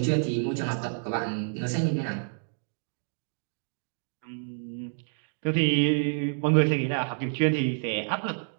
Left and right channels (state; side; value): silent; left; 59 dB below the other